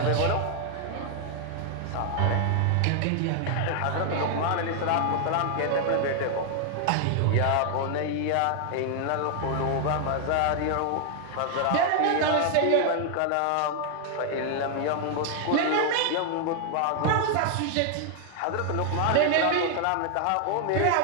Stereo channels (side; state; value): both; different; correlation 0.00